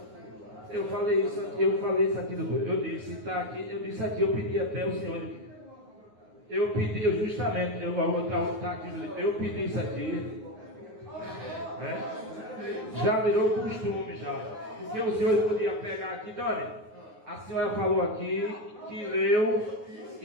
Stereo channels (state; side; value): late; left; 9.6 ms